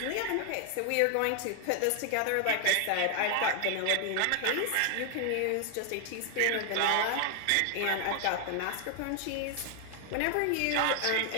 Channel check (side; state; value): both; different; correlation 0.00